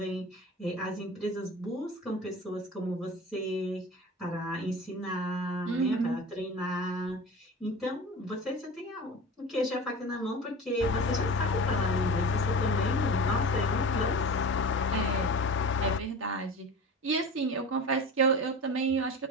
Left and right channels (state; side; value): normal; both; correlation 0.33